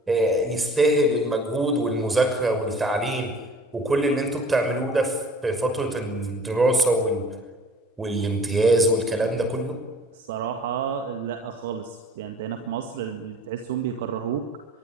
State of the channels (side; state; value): both; normal; correlation 0.49